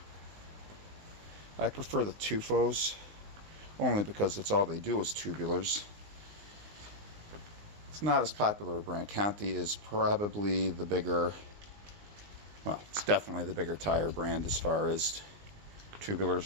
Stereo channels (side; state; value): left; late; 19 ms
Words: I prefer the Tufos only because that's all they do is tubulars. It's not as popular a brand. Conti is probably the bigger, well, it's definitely the bigger tire brand as far as